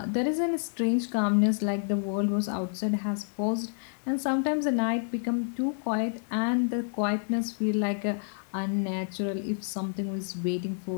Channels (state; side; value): silent; right; digital silence